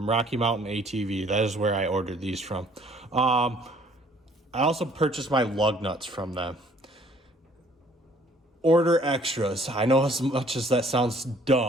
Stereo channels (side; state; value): both; normal; correlation 0.59